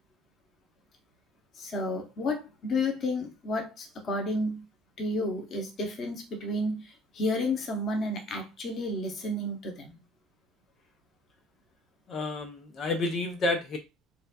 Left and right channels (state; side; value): normal; both; correlation 0.55